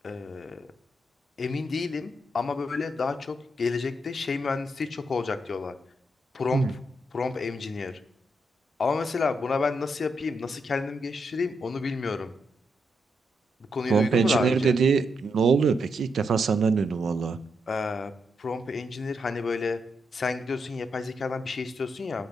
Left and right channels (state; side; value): normal; both; correlation 0.81